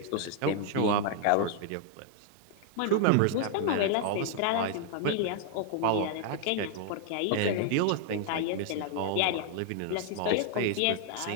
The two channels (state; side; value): different; both; correlation 0.00